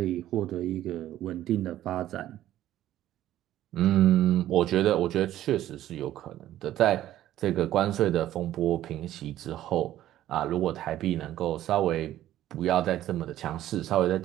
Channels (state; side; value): quieter; left; 13.2 dB